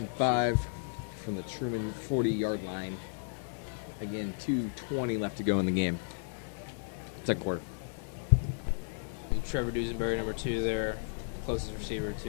5 from the Truman 40-yard line. Again, 2:20 left to go in the game. Second quarter. And Trevor Dusenberry, number 2 there, closest receiver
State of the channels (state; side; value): silent; right; 55 dB below the other